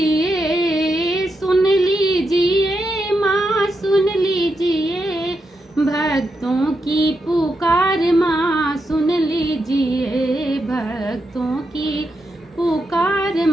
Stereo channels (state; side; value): normal; both; correlation 0.85